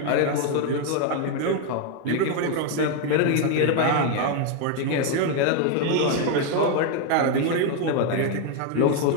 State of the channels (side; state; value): both; different; correlation 0.01